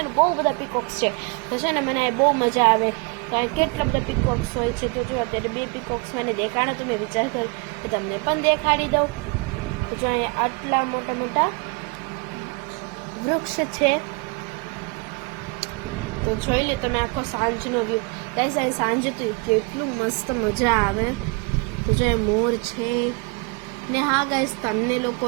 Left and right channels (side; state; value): left; quieter; 31.0 dB